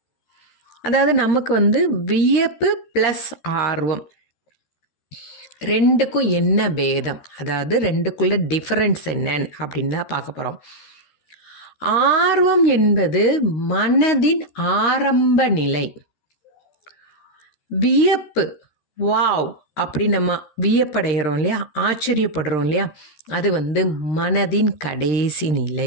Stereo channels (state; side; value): late; right; 13 ms